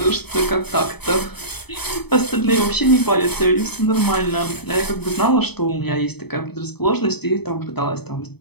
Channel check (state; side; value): late; right; 0.97 ms